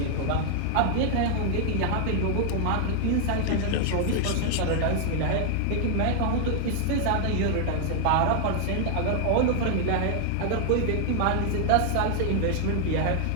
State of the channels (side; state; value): both; different; correlation 0.00